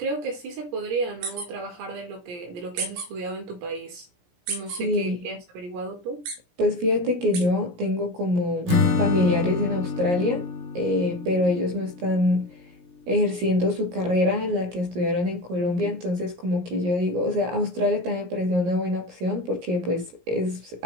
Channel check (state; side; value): late; left; 17 ms